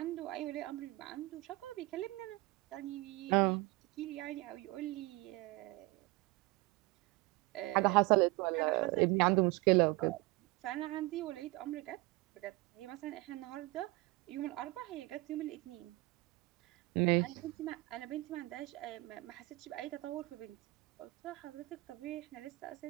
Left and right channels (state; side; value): quieter; left; 21.7 dB